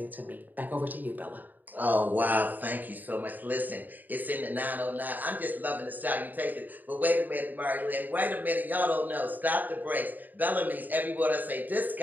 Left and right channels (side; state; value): left; late; 0.086 ms